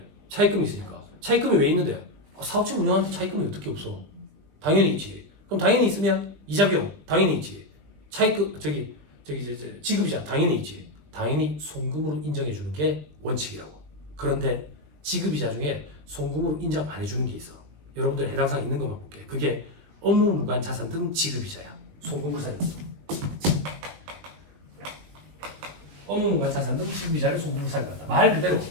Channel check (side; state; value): left; late; 20 ms